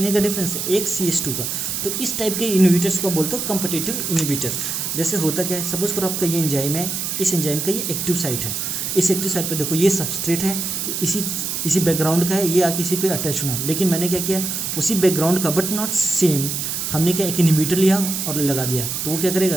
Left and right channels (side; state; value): right; noise; hiss, 3 dB below the sound